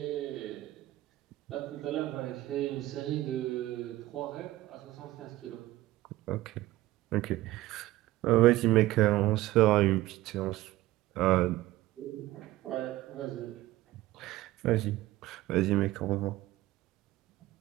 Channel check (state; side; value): quieter; left; 16.9 dB